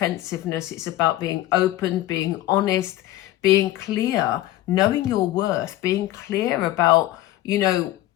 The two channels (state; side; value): quieter; right; 15.1 dB